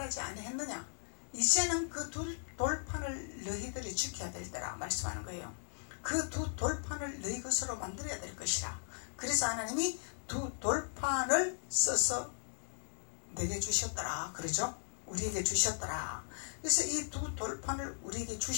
아니했느냐, 이제는 그 두 돌판을 너희들이 지켜야 될 때라 말씀하는 거예요. 그 두 돌판을 너희 것으로 만들어야 될 것이라. 그래서 하나님이 두 돌판을 써서 내게 주셨더라 그러죠. 우리에게 주셨더라. 그래서 이 두 돌판을 우리에게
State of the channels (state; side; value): silent; right; digital silence